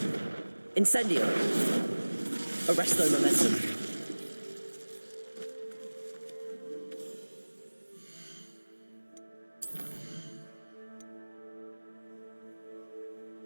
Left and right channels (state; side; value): inverted; both; correlation -1.00